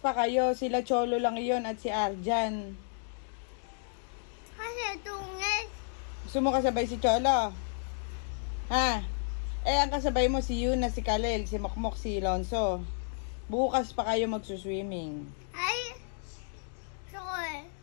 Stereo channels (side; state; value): right; silent; digital silence